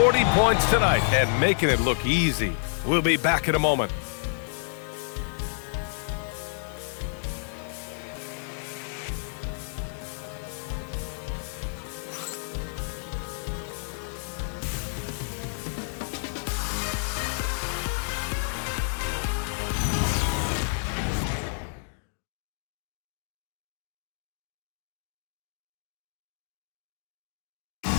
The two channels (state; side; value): silent; right; digital silence